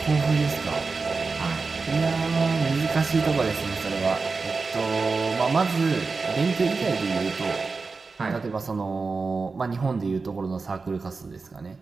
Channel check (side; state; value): left; quieter; 4.3 dB